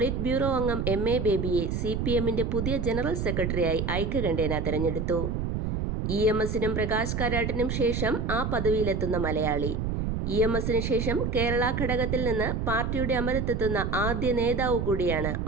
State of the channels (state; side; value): noise; right; rumble, 1 dB below the sound